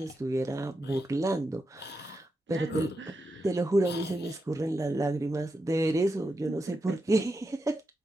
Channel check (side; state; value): both; normal; correlation 0.87